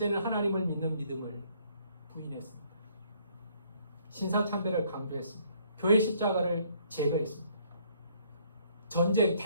하나님을 믿는 믿음을 부인했습니다. 신사참배를 강조했습니다. 교회 십자가를 제거했습니다. 전쟁,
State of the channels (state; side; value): inverted; both; correlation -0.64